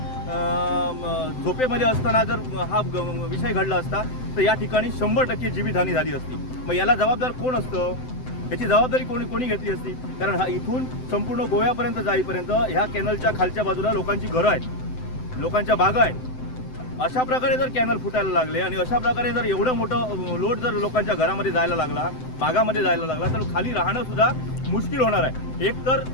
झोपेमध्ये असताना जर हा विषय घडला असता तर या ठिकाणी 100% जीवितहानी झाली असती. मग याला जबाबदार कोण असतं? याची जबाबदारी कोणी घेतली असती? कारण हा इथून संपूर्ण गोव्यापर्यंत जाईपर्यंत ह्या कॅनलच्या खालच्या बाजूला लोकांची घरं आहेत, लोकांच्या बागा आहेत. अशा प्रकारे जर कॅनल फुटायला लागले आणि अशा प्रकारे जर एवढं मोठं लोड जर लोकांच्या घरामध्ये जायला लागला, बागामध्ये जायला लागला, तर खाली राहणं सुद्धा मुश्किल होणार आहे. एक तर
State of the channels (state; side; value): late; right; 7.8 ms